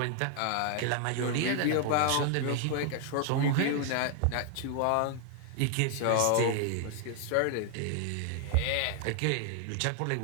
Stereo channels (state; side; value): different; both; correlation 0.00